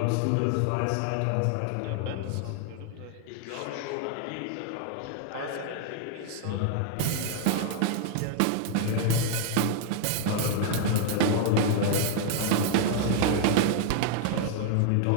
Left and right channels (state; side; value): different; both; correlation 0.00